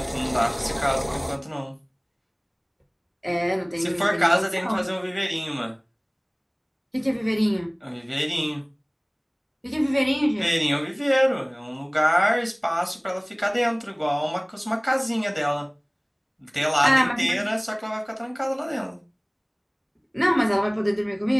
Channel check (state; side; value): identical; both; correlation 1.00